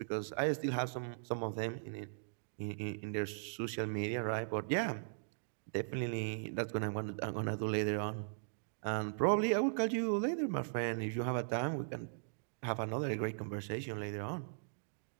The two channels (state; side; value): silent; left; digital silence